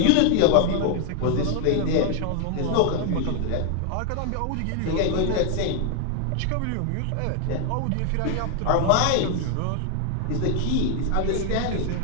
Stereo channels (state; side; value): different; both; correlation 0.00